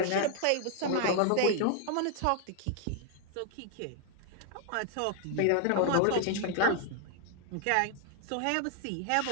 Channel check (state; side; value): different; both; correlation 0.00